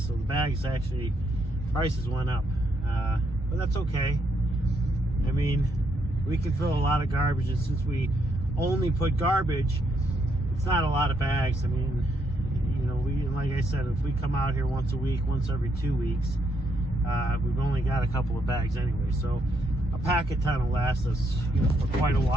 the bags actually, prices went up. But that's okay. I mean, we can fill a lot of garbage, and since we only put garbage, it's not a lot of bags. I mean, you know, like I said, if we come out here once a week, once every 2 weeks, we've only got a couple of bags anyway. So a packet ton will last us, you know, for quite a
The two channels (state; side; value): normal; both; correlation 0.76